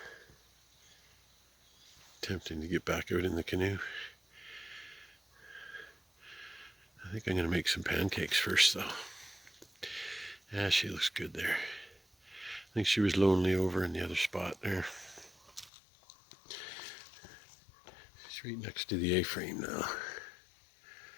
Tempting to get back out in the canoe. I think I'm going to make some pancakes first though. Yeah, she looks good there. I think she was lonely over in the other spot there. She's right next to the A-frame now.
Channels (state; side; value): drops out; right; at 15.7 s